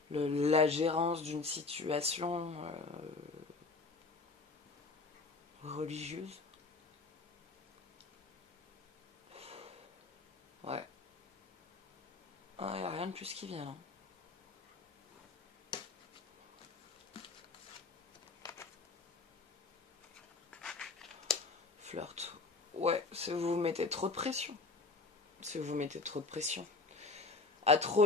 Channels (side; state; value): right; quieter; 3.8 dB